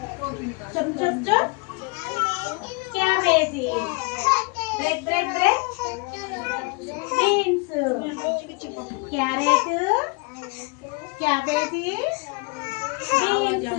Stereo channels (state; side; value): quieter; right; 29.4 dB